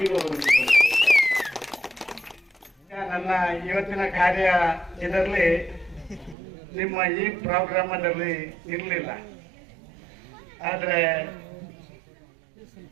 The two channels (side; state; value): left; drops out; at 6.4 s